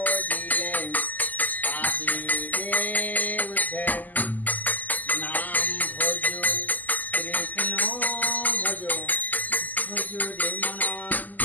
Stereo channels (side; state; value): right; late; 0.083 ms